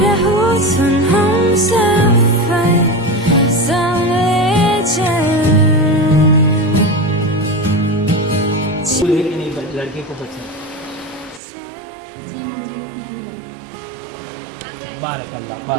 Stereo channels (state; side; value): drops out; left; at 11.4 s